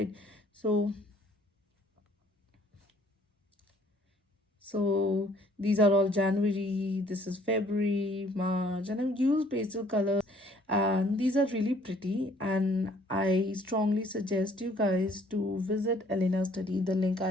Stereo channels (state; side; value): normal; both; correlation 0.59